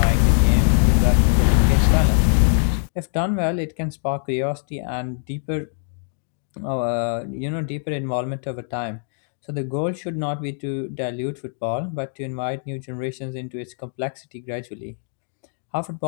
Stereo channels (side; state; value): right; silent; digital silence